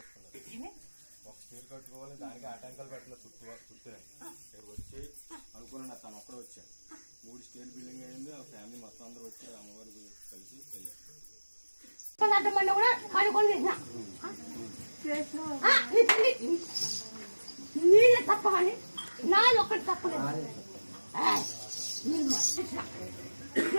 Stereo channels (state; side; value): inverted; both; correlation -1.00